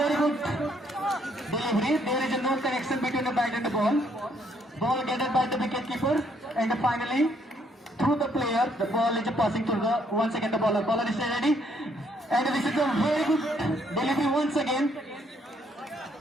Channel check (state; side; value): normal; both; correlation 0.69